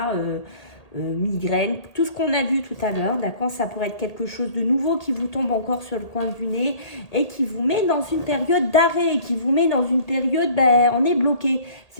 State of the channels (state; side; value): late; right; 1.8 ms